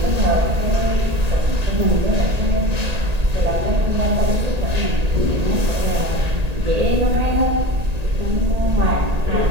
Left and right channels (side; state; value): left; late; 1.8 ms